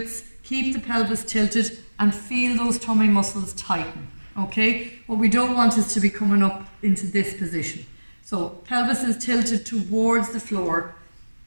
keep the pelvis tilted and feel those tummy muscles tighten. Okay, what we don't want is to be coming up into this position. So pelvis is tilted towards the floor,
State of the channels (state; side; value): inverted; both; correlation -1.00